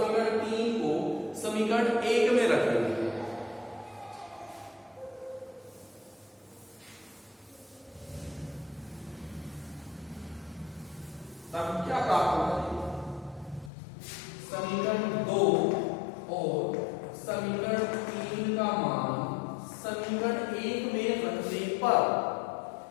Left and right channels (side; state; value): right; drops out; at 13.7 s